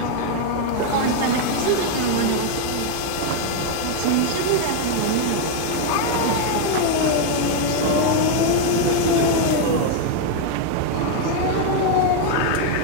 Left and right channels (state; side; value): different; both; correlation 0.01